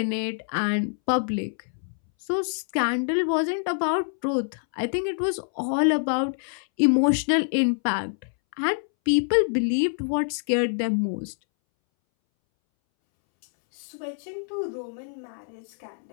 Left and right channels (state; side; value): silent; right; 61 dB below the other